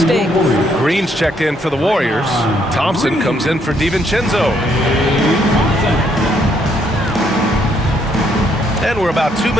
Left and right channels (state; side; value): normal; both; correlation 0.71